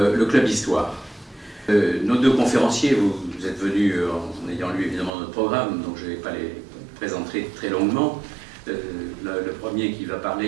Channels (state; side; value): drops out; left; at 5.1 s